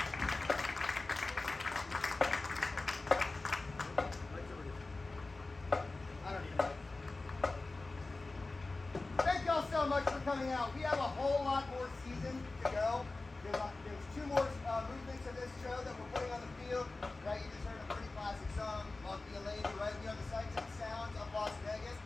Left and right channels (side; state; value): right; quieter; 3.3 dB